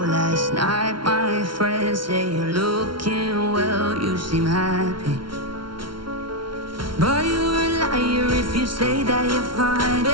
night, my friend. Say you're looking well, you seem happy. But you're a liar if you say that you're fine.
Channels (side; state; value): left; late; 0.73 ms